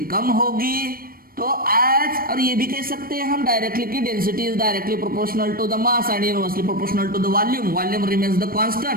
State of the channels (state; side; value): late; left; 0.43 ms